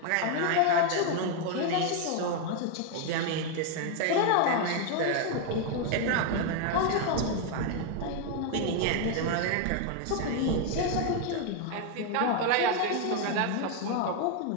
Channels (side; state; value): both; different; correlation 0.01